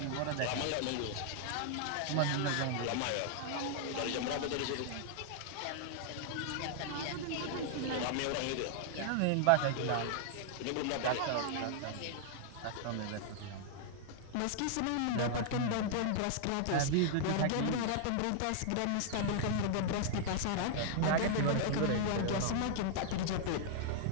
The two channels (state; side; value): different; both; correlation -0.01